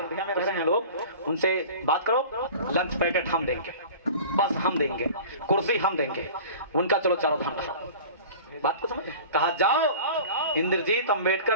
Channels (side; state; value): both; inverted; correlation -0.39